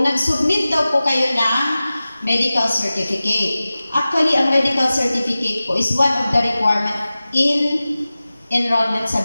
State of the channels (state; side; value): inverted; both; correlation -0.96